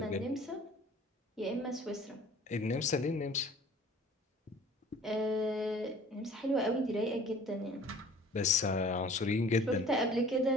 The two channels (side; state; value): both; normal; correlation 0.49